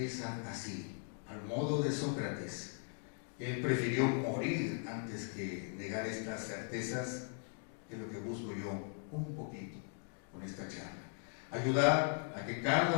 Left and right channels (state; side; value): silent; right; 52 dB below the other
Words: así, al modo de Sócrates. Él prefirió morir antes que negar estas certezas, que es lo que busco yo un poquito con esta charla. Ayudar a que